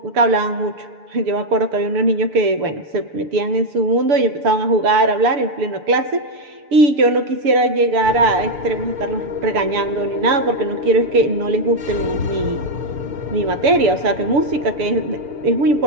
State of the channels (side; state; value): left; late; 6.8 ms